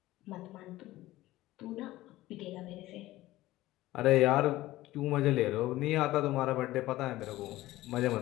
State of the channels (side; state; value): right; quieter; 16.8 dB